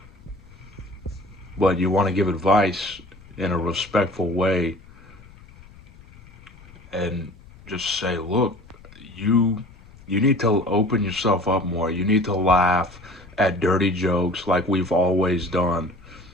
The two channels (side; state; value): left; noise; rumble, 22 dB below the sound